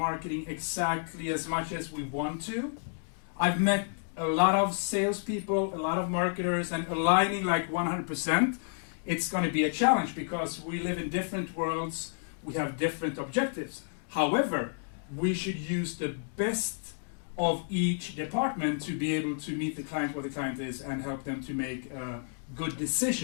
exactly as much as we want to. I've met a lot of salespeople, a lot of marketers, and aligning like 100%, it's going to be a challenge because we live in different worlds, we have different objectives. However, we should use the best of each department to be able to meet the client where the client is and help them to make a good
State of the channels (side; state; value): right; silent; digital silence